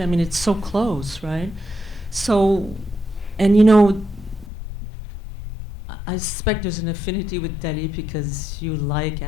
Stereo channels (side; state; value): right; drops out; at 4.5 s